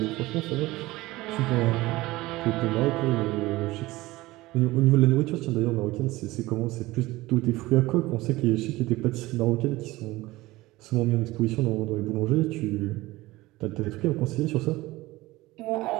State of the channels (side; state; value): left; quieter; 19.1 dB